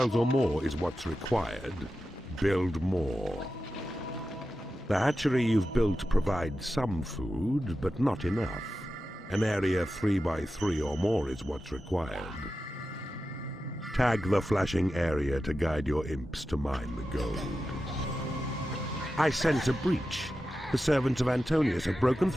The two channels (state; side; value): normal; both; correlation 0.92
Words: or more is what's required. Build more. The hatchery you've built provides some food, but not enough. An area 3 by 3 or more is what's required. Tag the flashing area to guide your imps to mine the gold. I sense a breach. The servants of Antonius have broken